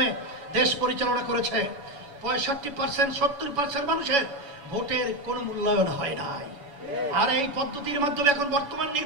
দেশ পরিচালনা করেছে, 65% 70% মানুষের ভোটের কোনো মূল্যায়ন হয় নাই। আর এই পদ্ধতির মাধ্যমে এখন বর্তমান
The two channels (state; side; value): late; left; 7.1 ms